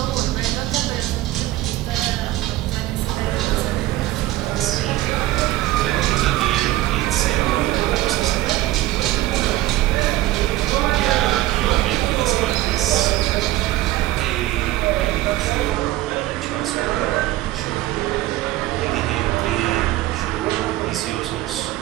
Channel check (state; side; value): quieter; left; 16.2 dB